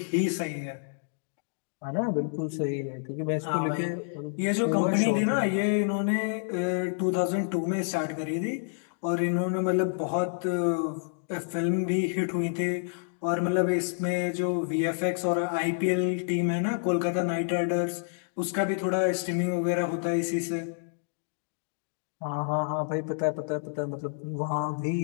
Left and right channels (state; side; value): silent; right; digital silence